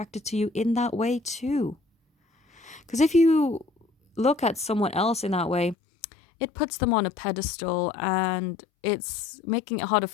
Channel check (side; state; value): right; drops out; at 5.8 s